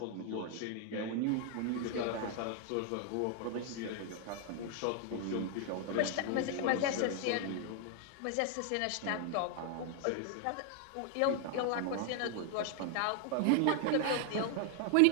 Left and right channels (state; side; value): different; both; correlation 0.00